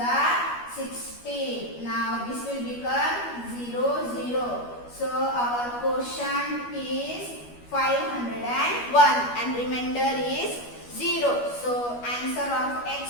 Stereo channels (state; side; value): late; right; 12 ms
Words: 16. Now this will become 0, 0. So our quotient is 501 and remainder is 0. So answer of